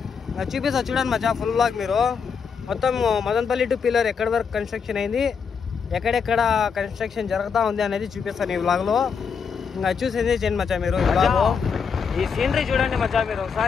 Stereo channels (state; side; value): quieter; right; 6.2 dB